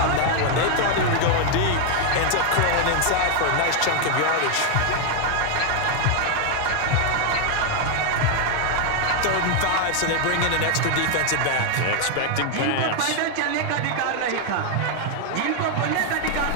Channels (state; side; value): different; both; correlation 0.01